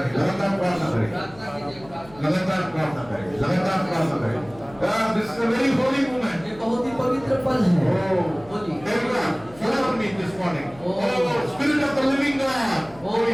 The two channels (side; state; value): left; noise; hum, 22 dB below the sound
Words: लगातार प्रार्थना करें, लगातार प्रार्थना करें, लगातार प्रार्थना करें। This is a very holy moment. ये बहुत ही पवित्र पल है। Oh, बोलिए। everyone, follow me this morning. Oh, Spirit of the living God. ओ